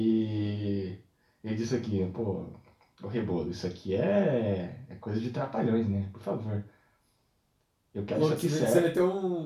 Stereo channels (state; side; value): identical; both; correlation 1.00